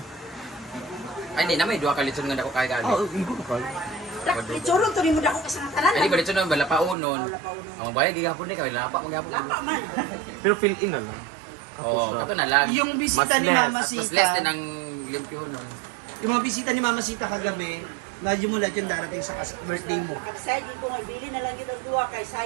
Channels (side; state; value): left; drops out; at 7.0 s